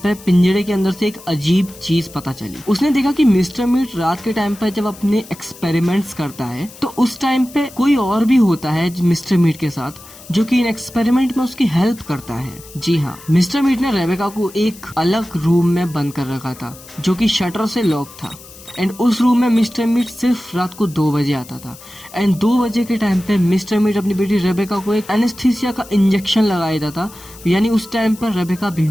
पिंजड़े के अंदर से एक अजीब चीज पता चली। उसने देखा कि मिस्टर मीट रात के टाइम पे जब अपने एक्सपेरिमेंट्स करता है तो उस टाइम पे कोई और भी होता है मिस्टर मीट के साथ, जो कि इन एक्सपेरिमेंट में उसकी हेल्प करता है। जी हाँ, मिस्टर मीट ने रेबेका को एक अलग रूम में बंद कर रखा था, जो कि शटर से लॉक था। एंड उस रूम में मिस्टर मीट सिर्फ रात को 2 बजे आता था। एंड 2 बजे के टाइम पे मिस्टर मीट अपनी बेटी रेबेका को एक एनेस्थीसिया का इंजेक्शन लगा देता था, यानी उस टाइम पर रेबेका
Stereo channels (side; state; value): left; noise; hiss, 19 dB below the sound